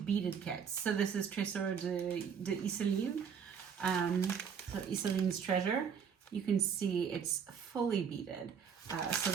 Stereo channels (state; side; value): quieter; left; 7.1 dB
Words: kits. So this is Trésor de Iseline. So Iseline's Treasure. You can see it's fully beaded. So